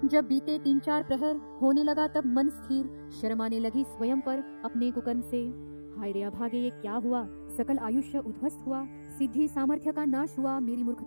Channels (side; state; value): both; inverted; correlation -1.00